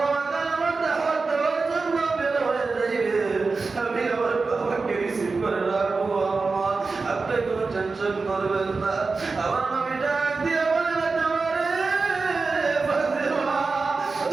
কালেমার দাওয়াত দেওয়ার জন্য বের হয়ে যাইবে, আমি আমার বাবাকে রিসিভ করে রাখবো আম্মা, আপনি কোনো টেনশন করবেন না। আমার নবী ডাক দিয়ে বলে, ফাতেমা রে, ফাতেমা,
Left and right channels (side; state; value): left; quieter; 4.2 dB